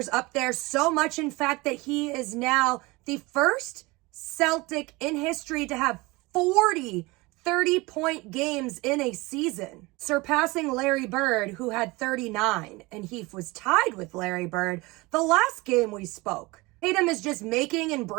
up there so much, in fact, that he is now the first Celtic in history to have 40 30-point games in a season, surpassing Larry Bird, who had 39, and he was tied with Larry Bird the last game we spoke. Tatum is just making and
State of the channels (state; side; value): quieter; left; 23.2 dB